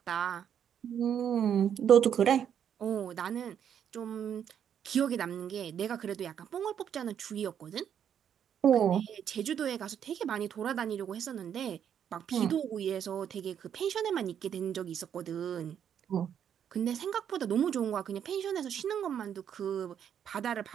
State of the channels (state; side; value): quieter; left; 8.8 dB